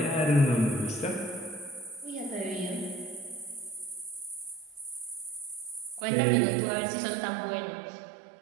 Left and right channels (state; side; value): drops out; left; at 6.1 s